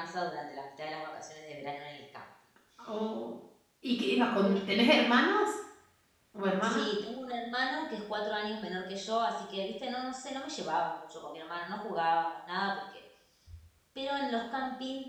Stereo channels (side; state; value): both; identical; correlation 1.00